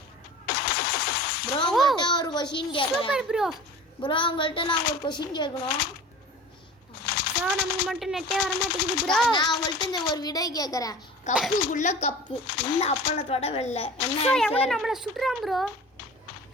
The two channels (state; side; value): normal; both; correlation 0.39